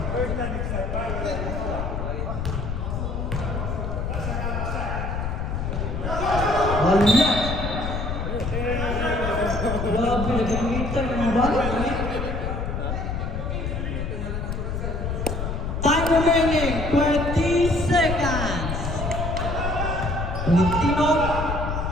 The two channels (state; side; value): noise; left; rumble, 2 dB below the sound